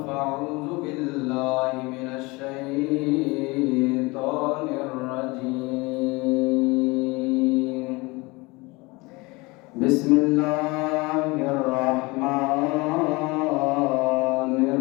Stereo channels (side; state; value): right; quieter; 24.6 dB